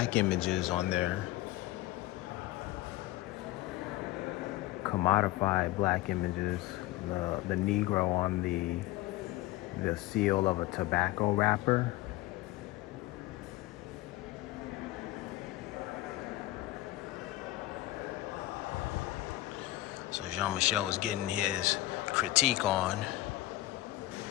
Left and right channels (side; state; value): right; quieter; 17.1 dB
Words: images on there, commodified black images the Negro on the seal of a tobacco wrapper. So Jean-Michel was getting his critique on.